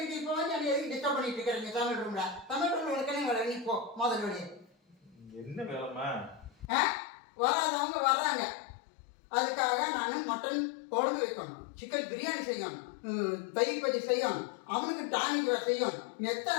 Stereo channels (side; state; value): right; drops out; at 6.7 s